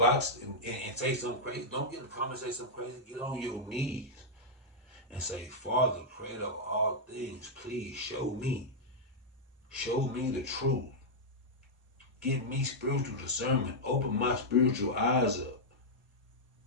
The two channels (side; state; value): both; normal; correlation -0.06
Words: and say something crazy. Don't get in the comments and say something crazy. Get on your knees and say, Father, creator of all things, please show me. Show me the truth. Give me spiritual discernment. Open my spiritual eyes up.